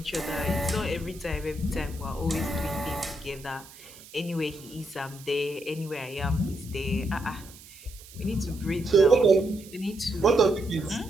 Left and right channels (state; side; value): noise; right; hiss, 20 dB below the sound